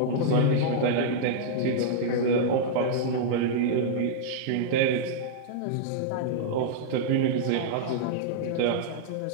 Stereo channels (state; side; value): different; both; correlation -0.02